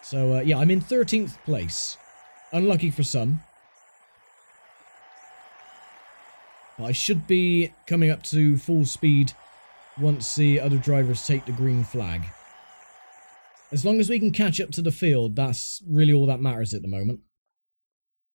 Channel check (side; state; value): both; inverted; correlation -1.00